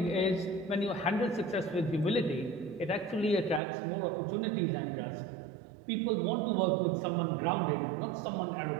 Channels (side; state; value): left; drops out; at 3.6 s